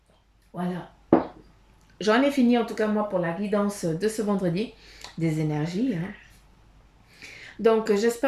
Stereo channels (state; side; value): identical; both; correlation 1.00